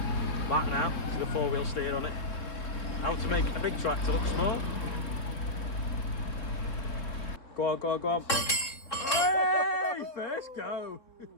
Back now with a 4-wheel steer on it. How to make a big tractor look small. Go on, go on, go on. First go.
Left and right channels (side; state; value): right; late; 3.8 ms